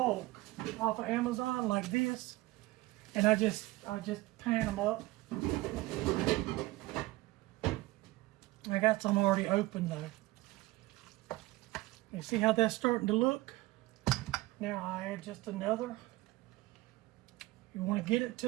off of Amazon like this, and I just pan them up. I got some already open though. You see how that's starting to look? Now I add just another. You want to get it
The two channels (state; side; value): quieter; left; 19.3 dB